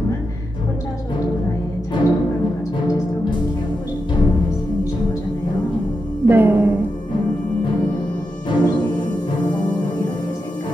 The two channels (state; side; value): normal; both; correlation 0.87